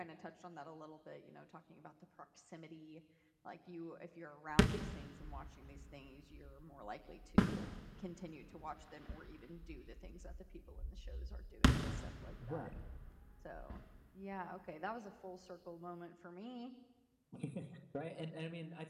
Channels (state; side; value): identical; both; correlation 1.00